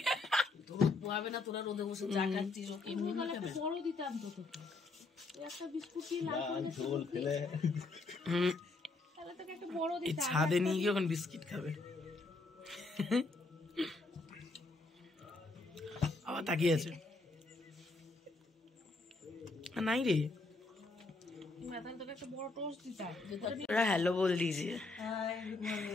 তোর পোয়াবে না, তোরা রোদে বসে চা খাচ্ছিস। এমনি একটা বড় দিতাম তো তোকে, একটা বিস্কুট দিয়ে ঝোল খেলে তাহলে তোকে একটা বড় দিতাম। ছাদে নিয়ে গিয়ে এখন বিস্কিট খাবে। আবার তাকিয়ে আছে। नहीं रे, हेलो बोल दीजिए।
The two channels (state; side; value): quieter; right; 3.4 dB